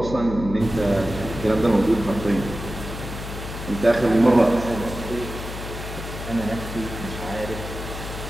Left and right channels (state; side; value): noise; left; hum, 8 dB below the sound